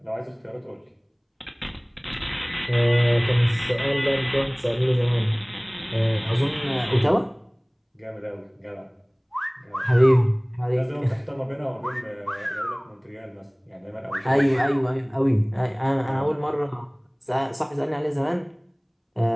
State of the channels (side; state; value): both; identical; correlation 1.00